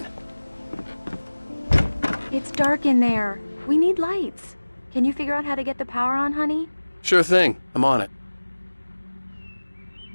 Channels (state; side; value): inverted; both; correlation -1.00